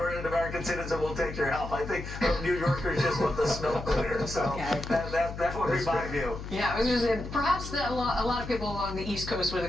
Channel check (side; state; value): left; noise; hum, 9 dB below the sound